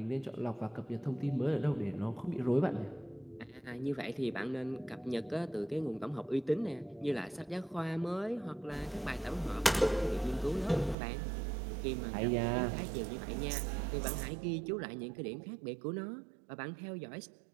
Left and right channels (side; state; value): left; drops out; at 11.0 s